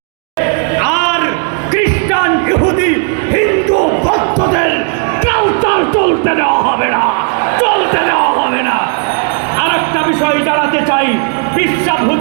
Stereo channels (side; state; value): left; quieter; 39.7 dB